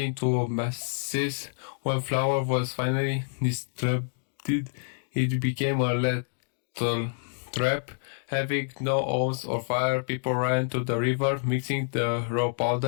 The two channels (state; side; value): silent; right; digital silence